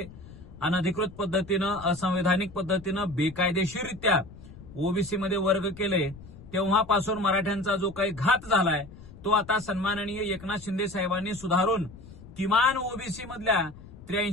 अनधिकृत पद्धतीनं, असंवैधानिक पद्धतीनं, बेकायदेशीररित्या ओबीसीमध्ये वर्ग केले. तेव्हापासून मराठ्यांचा जो काही घात झालाय तो आता सन्माननीय एकनाथ शिंदे साहेबांनी सुधारून किमान ओबीसी मधल्या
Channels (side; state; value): left; noise; rumble, 18 dB below the sound